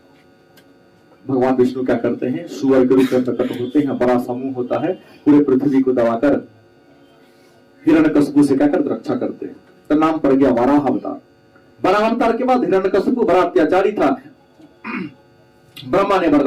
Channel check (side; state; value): both; identical; correlation 1.00